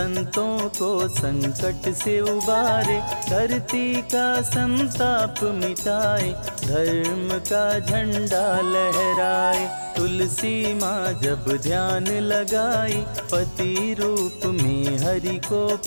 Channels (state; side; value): inverted; both; correlation -1.00